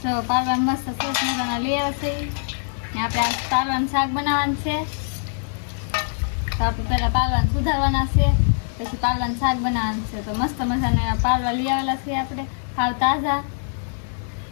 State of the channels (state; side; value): silent; right; digital silence